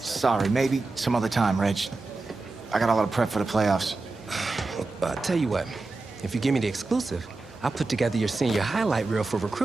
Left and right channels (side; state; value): left; quieter; 3.5 dB